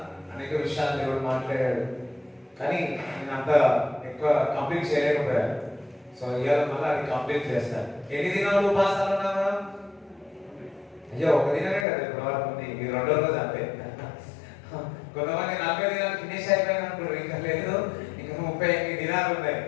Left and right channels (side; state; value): right; drops out; at 11.9 s